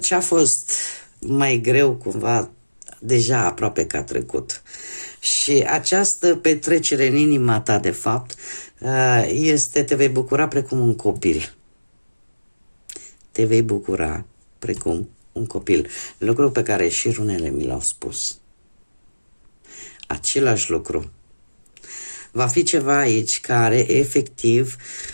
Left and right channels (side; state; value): both; inverted; correlation -1.00